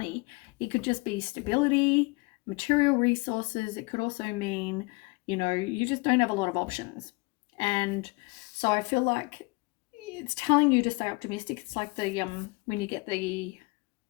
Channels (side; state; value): right; quieter; 27.3 dB